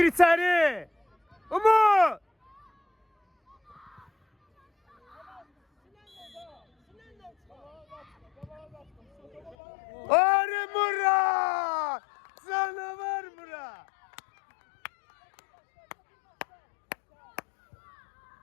içeri. Umut. Arı Murat. Canavar Murat.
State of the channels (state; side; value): drops out; right; at 9.6 s